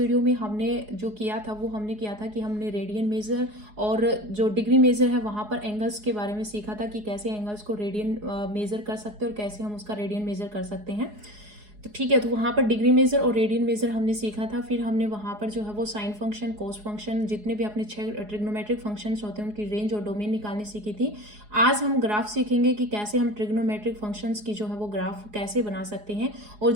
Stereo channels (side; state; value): left; late; 4.8 ms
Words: में हमने जो किया था वो हमने किया था कि हमने रेडियन मेजर और जो डिग्री मेजर है वहाँ पर एंगल्स के बारे में सीखा था कि कैसे एंगल्स को रेडियन मेजर कर सकते हैं और कैसे हम उसका रेडियन मेजर कर सकते हैं। तो ठीक है, तो वहाँ पर डिग्री मेजर और रेडियन मेजर हमने सीखा था। फिर हमने वहाँ पर जो है वो साइन फंक्शन, कोस फंक्शन, जितने भी अपने 6 ट्रिग्नोमेट्रिक फंक्शंस होते हैं उनकी रेंज और डोमेन निकालनी सीखी थी। आज हम ग्राफ सीखेंगे कि कैसे हम ट्रिग्नोमेट्रिक फंक्शंस की जो है वो ग्राफ कैसे बना सकते हैं। और